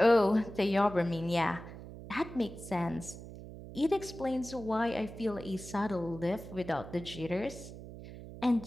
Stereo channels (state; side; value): noise; right; hum, 13 dB below the sound